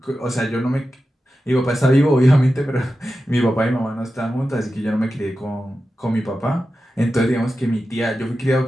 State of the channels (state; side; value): normal; both; correlation 0.92